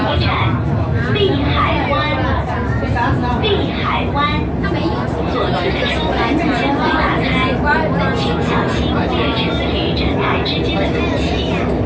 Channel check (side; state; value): both; identical; correlation 1.00